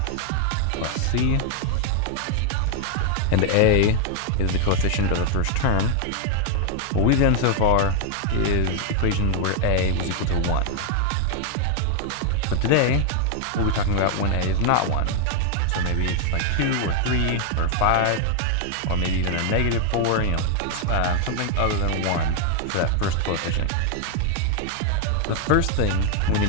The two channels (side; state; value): both; different; correlation 0.00